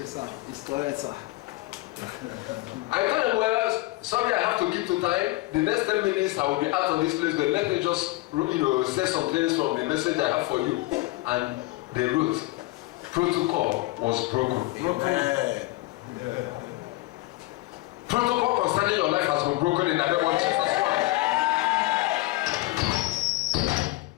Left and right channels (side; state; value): right; quieter; 20.2 dB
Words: sir. It's correct, sir. I told them, well, sorry, I have to keep to time. The next 10 minutes, I will be out of this place, but let me just, say some things from the message I have for you. And they wrote, protocol was broken. Amen. Yeah. Protocol concerning your life has been broken in the name of Jesus Christ.